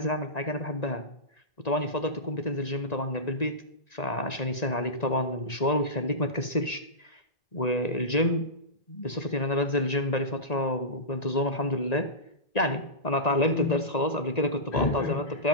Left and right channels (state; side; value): late; right; 1.9 ms